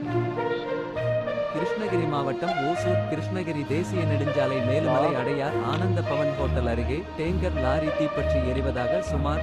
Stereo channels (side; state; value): both; identical; correlation 1.00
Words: கிருஷ்ணகிரி மாவட்டம் ஓசூர் கிருஷ்ணகிரி தேசிய நெடுஞ்சாலை மேலுமலை அடையார் ஆனந்த பவன் ஹோட்டல் அருகே டேங்கர் லாரி தீப்பற்றி எரிவதாக சுமார்